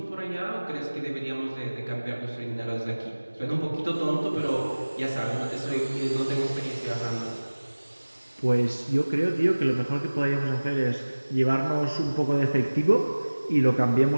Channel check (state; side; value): inverted; both; correlation -1.00